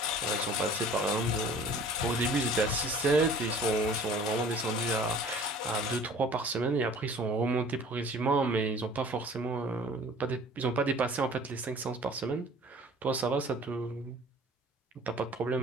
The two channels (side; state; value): both; normal; correlation 0.47